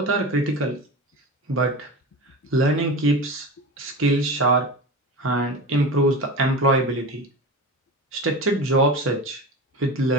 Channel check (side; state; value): both; normal; correlation 0.28